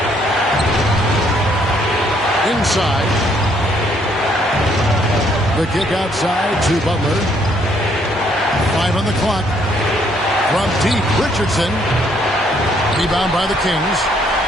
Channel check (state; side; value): normal; both; correlation 0.68